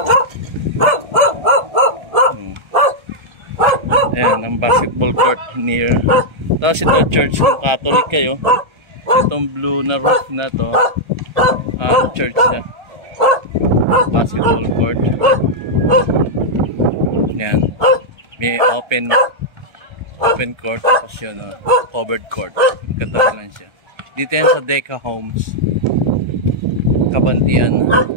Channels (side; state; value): left; late; 1.3 ms